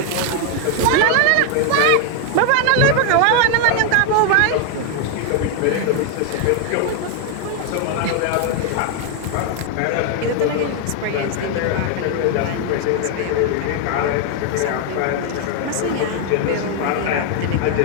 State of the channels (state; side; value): different; both; correlation 0.00